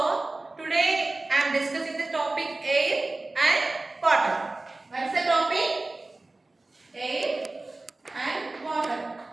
today I am discussing the topic air and water. What is the topic? Air and water.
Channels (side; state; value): left; quieter; 3.1 dB